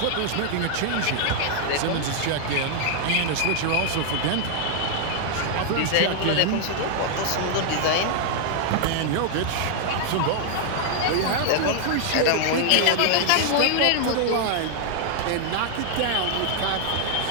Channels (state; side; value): different; both; correlation -0.01